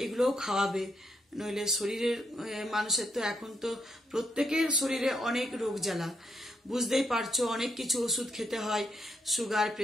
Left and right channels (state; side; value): normal; both; correlation 0.78